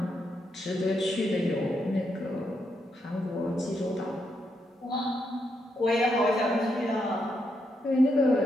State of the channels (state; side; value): normal; both; correlation 0.80